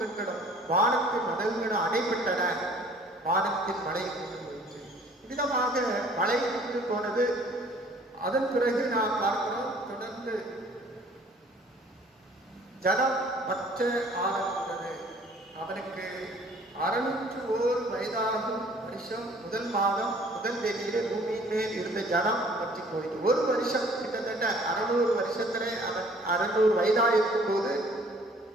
வானத்தின் மதகுகளும் அடைபட்டன. வானத்தின் மழை கொண்டு போயிற்று. விதமாக மழை கொண்டு போனது. அதன் பிறகு நாம் பார்க்கிறோம், தொடர்ந்து ஜனம் மற்ற ஆரம்பித்தது. அவனுக்கு 601 வயதாகும் வருஷம் முதல் மாதம் முதல் தேதியிலே பூமியின் மேல் இருந்த ஜனம் பற்றி போயிட்டு ஒரு வருஷம், கிட்டத்தட்ட 600 வருஷத்திலே அவன் 600 வயதாக இருக்கும் போது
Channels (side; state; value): both; normal; correlation 0.55